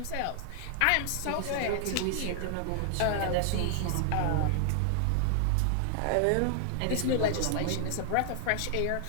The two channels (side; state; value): both; different; correlation 0.00